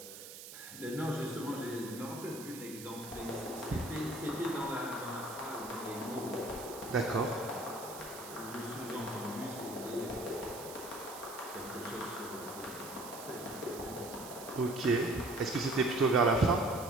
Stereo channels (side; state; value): right; noise; hiss, 12 dB below the sound